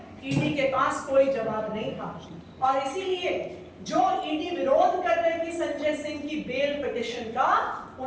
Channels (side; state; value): both; identical; correlation 1.00